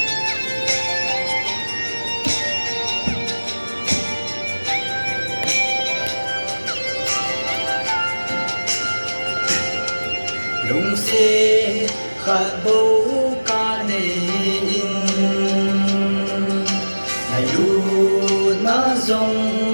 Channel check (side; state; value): both; inverted; correlation -1.00